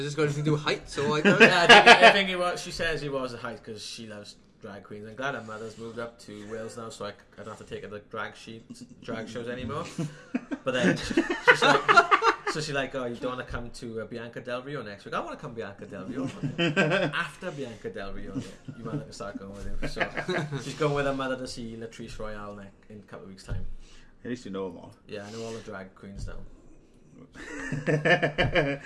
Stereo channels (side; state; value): both; identical; correlation 1.00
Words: this got anything to do with heights or like? Yeah, I think it was. She says he was a height because she loves drag queens. I'm glad her mother's moved up to Wales now, so I don't have to take her to drag shows anymore. But then she's like, oh, you don't want to come to Bianca Del Rio next week? I want to come Bianca Del Rio. After Bianca Del Rio, you might have to start going with him. So she's going with her mother to see Latrice Royale in a couple of weeks' time. At least you know them all. Yeah, I know all the drag queens now.